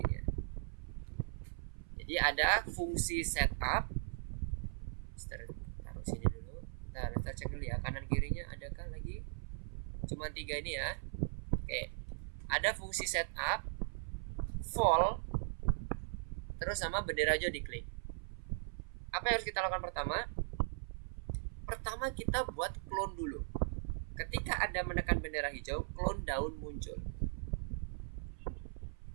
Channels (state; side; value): silent; left; 52 dB below the other